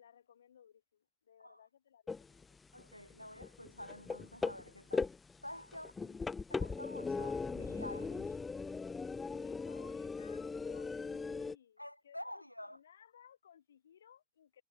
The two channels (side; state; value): right; quieter; 3.8 dB